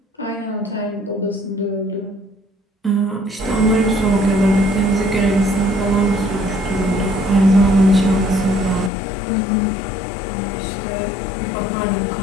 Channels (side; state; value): right; drops out; at 8.9 s